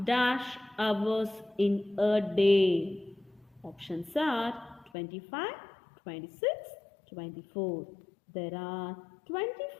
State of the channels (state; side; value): drops out; right; at 4.9 s